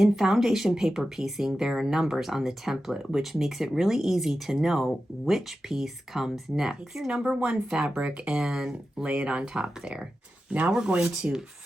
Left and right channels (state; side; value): normal; both; correlation 0.92